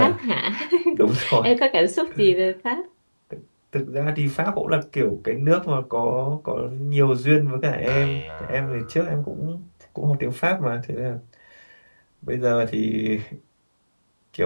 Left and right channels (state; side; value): inverted; both; correlation -1.00